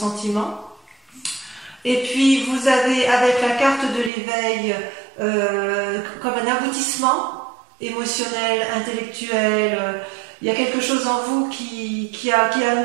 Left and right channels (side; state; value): left; drops out; at 4.1 s